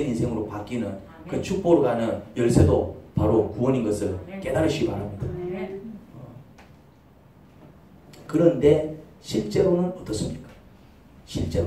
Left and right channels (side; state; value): both; identical; correlation 1.00